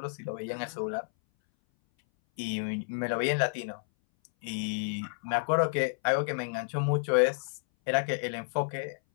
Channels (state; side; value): silent; right; 57 dB below the other